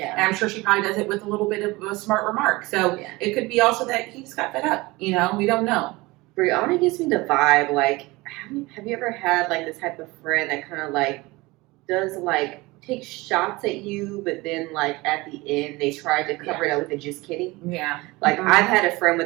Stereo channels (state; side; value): quieter; left; 22.1 dB